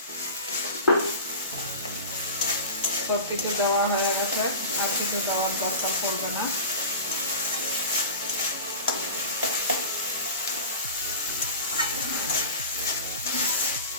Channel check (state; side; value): inverted; both; correlation -0.33